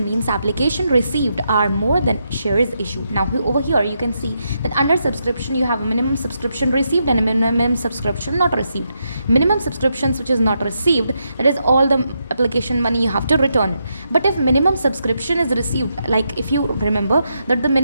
means application received are more than shares issued. Now over here you can see that under subscription you have a minimum subscription received and a minimum subscription not received. Minimum subscriptions which is not received, that is all the application money you have to return it. But if minimum subscription is received, like if you remember that the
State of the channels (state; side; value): inverted; both; correlation -0.82